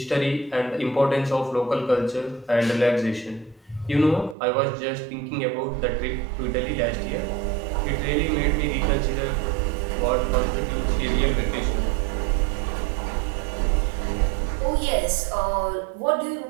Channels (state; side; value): drops out; left; at 4.4 s